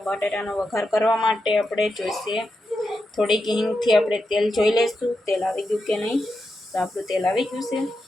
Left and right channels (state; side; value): normal; both; correlation 0.87